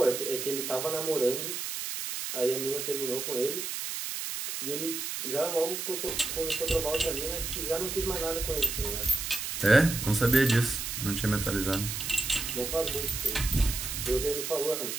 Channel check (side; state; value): right; noise; hiss, 4 dB below the sound